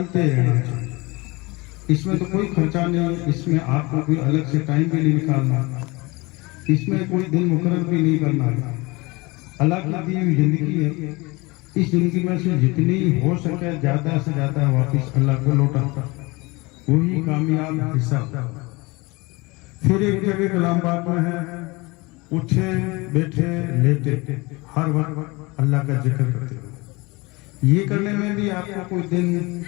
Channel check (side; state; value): right; quieter; 24.4 dB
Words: रहना चाहिए। इसमें तो कोई खर्चा नहीं, इसमें आपको कोई अलग से टाइम भी नहीं निकालना, इसमें कोई दिन मुकर्रर भी नहीं करना है। अल्लाह की दी हुई जिंदगी है, इस जिंदगी में से जितनी हो सके ज्यादा से ज्यादा वापस अल्लाह को लौटा, वही कामयाब हिस्सा। फिर एक जगह कलाम पाक में है, उठे बैठे लेटे हर वक्त अल्लाह का जिक्र करते हो। ये करने में भी आपको कोई दिन